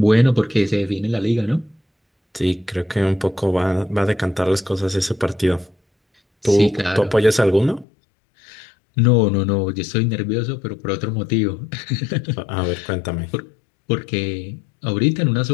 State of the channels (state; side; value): drops out; right; at 7.9 s